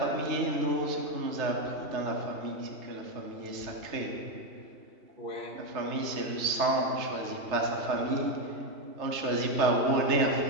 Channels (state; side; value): late; left; 3.3 ms